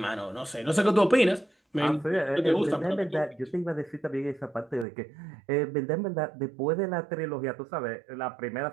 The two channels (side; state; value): left; drops out; at 4.9 s